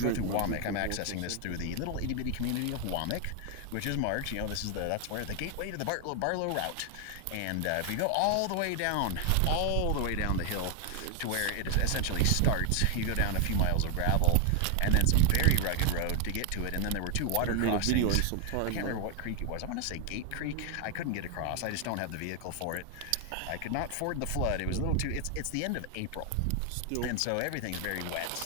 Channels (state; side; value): different; both; correlation 0.00